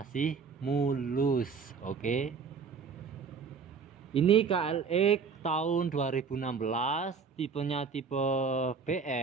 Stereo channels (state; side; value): quieter; left; 5.6 dB